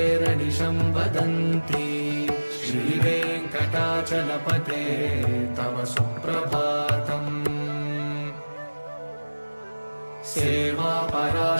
वदन्ति श्रीवेङ्कटाचलपते तव सुप्रभातम्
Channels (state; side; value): inverted; both; correlation -1.00